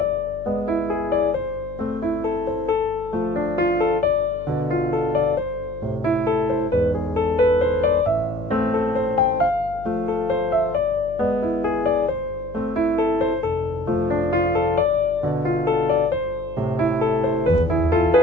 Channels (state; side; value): noise; left; hum, 16 dB below the sound